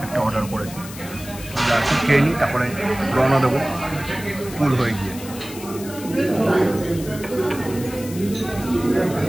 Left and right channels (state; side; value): noise; left; hiss, 14 dB below the sound